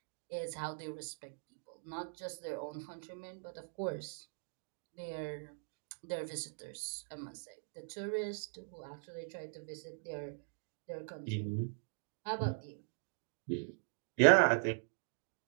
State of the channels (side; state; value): left; silent; digital silence